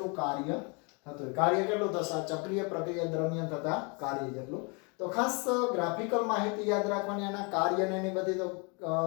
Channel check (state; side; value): quieter; right; 32.9 dB